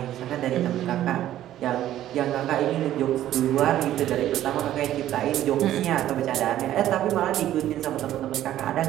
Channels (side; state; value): left; quieter; 12.7 dB